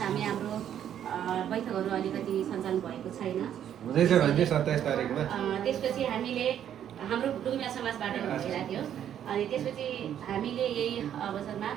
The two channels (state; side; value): quieter; left; 10.0 dB